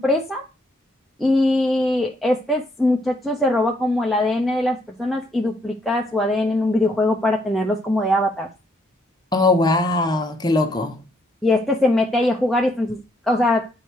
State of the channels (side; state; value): both; normal; correlation 0.72